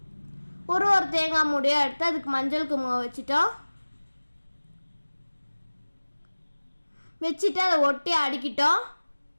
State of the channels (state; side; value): inverted; both; correlation -1.00